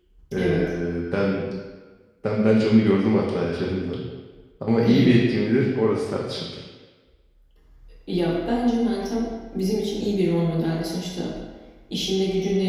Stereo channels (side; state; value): both; identical; correlation 1.00